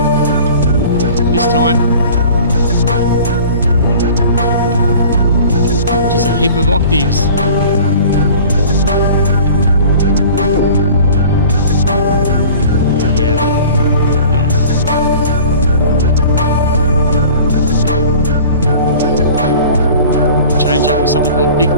This time, just a heap of octaves. Something called Big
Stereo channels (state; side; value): inverted; both; correlation -0.44